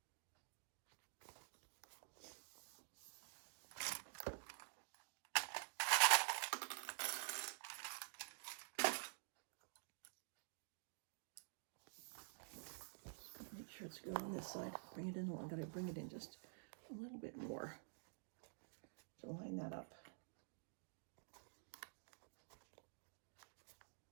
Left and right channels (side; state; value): left; silent; digital silence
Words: Make sure it's good on this side. Bring it in. I gotta bring it in just a little bit more to line that up.